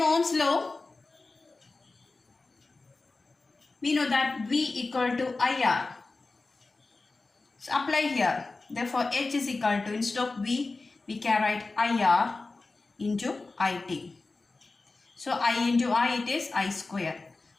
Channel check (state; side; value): quieter; right; 3.6 dB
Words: Ohm's law, we know that V equal to IR. So apply here. Therefore H is equal to, instead of V, we can write IR into IT. So I into I, it is I square.